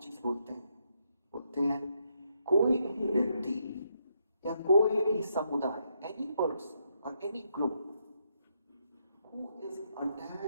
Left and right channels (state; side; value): inverted; both; correlation -0.78